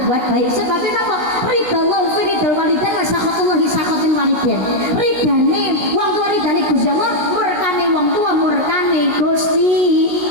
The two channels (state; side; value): late; left; 17 ms